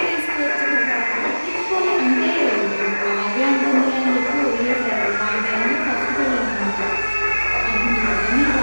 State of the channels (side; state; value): both; inverted; correlation -1.00